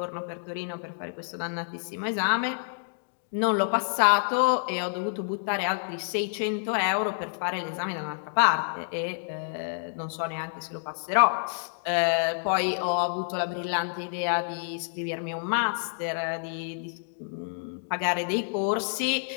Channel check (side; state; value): right; silent; digital silence